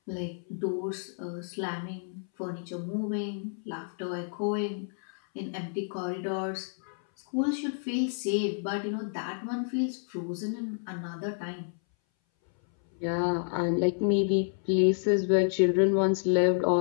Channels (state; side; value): silent; right; 58 dB below the other